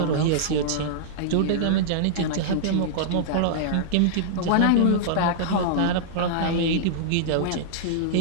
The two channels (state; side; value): different; both; correlation -0.02